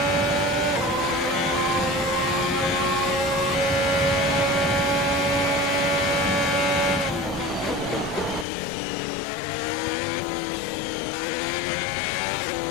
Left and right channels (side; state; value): right; drops out; at 8.5 s